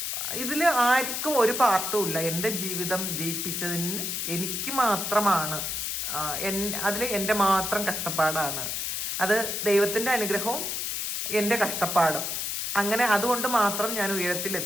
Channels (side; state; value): left; noise; hiss, 2 dB below the sound